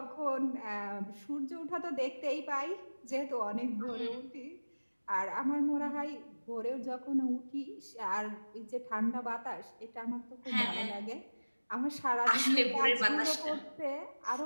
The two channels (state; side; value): inverted; both; correlation -1.00